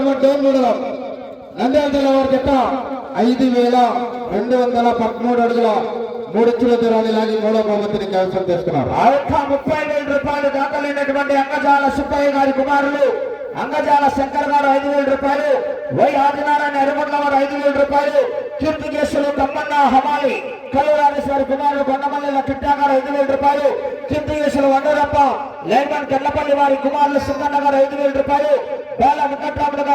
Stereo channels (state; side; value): identical; both; correlation 1.00